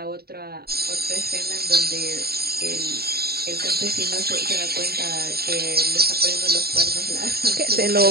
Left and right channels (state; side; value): late; left; 0.45 ms